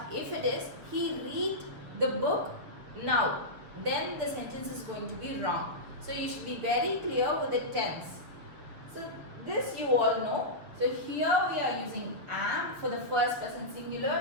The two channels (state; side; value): late; left; 7.0 ms